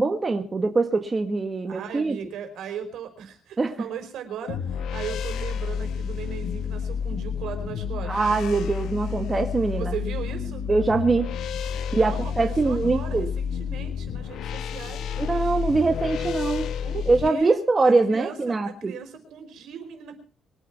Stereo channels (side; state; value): both; normal; correlation 0.86